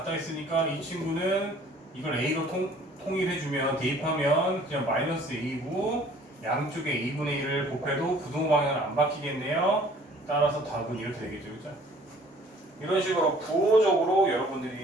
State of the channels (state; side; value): normal; both; correlation 0.54